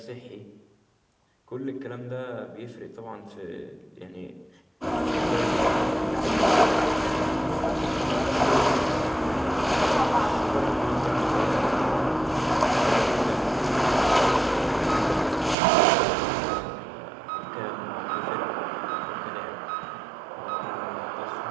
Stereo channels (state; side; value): drops out; left; at 15.6 s